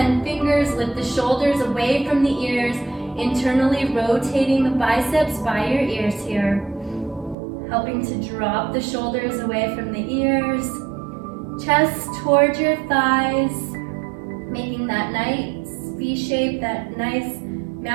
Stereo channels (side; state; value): left; drops out; at 7.4 s